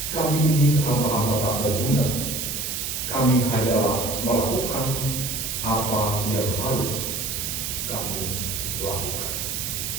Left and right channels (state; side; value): noise; right; hiss, 3 dB below the sound